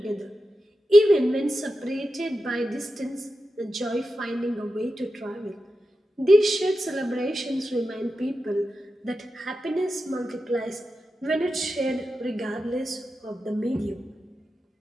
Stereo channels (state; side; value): normal; both; correlation 0.90